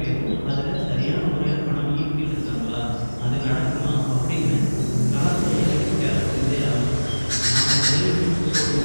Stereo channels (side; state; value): both; inverted; correlation -1.00